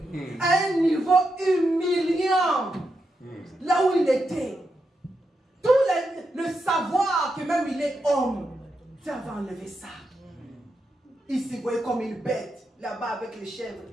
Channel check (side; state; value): both; normal; correlation 0.85